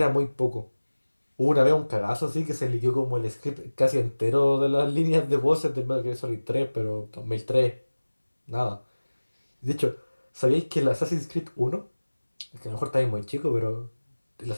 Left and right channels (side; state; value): both; inverted; correlation -1.00